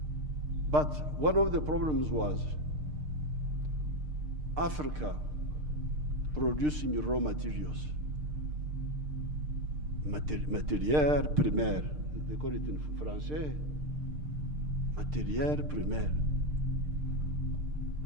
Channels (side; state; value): left; late; 6.6 ms